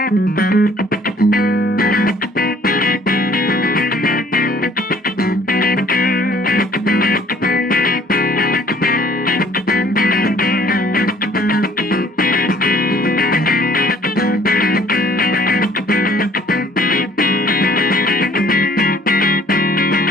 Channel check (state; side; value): normal; both; correlation 0.56